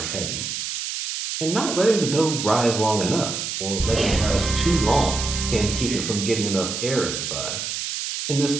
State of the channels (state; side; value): noise; right; hiss, 4 dB below the sound